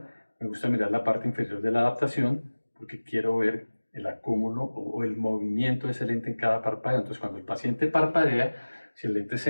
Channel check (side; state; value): both; inverted; correlation -1.00